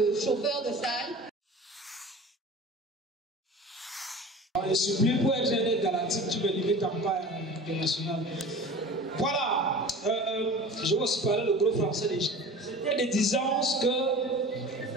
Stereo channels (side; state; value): both; normal; correlation 0.38